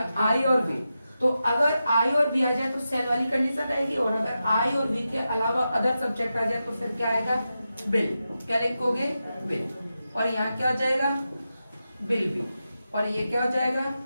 आई और बी। तो अगर आई और बी आ जाए तो सेल वाली कंडीशन आएगी, और अगर आई और बी के अलावा अदर सब्जेक्ट आ जाए तो फिर क्या आएगा, बिल। क्या लिखोगे, बिल। और यहाँ क्या हो जाएगा, बिल बी। और ये क्या हो जाएगा,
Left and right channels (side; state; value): both; inverted; correlation -0.90